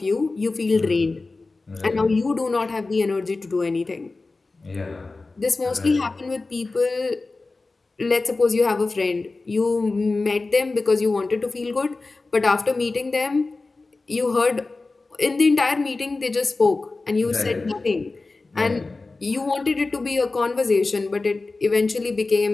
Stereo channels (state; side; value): quieter; right; 3.5 dB